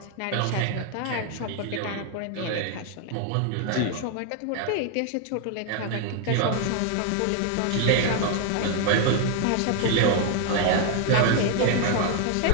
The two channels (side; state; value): both; different; correlation 0.01